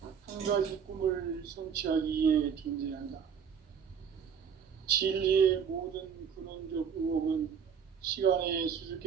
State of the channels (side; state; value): left; quieter; 7.2 dB